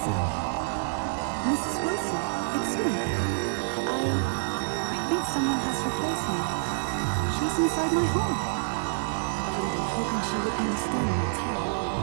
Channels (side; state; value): left; silent; digital silence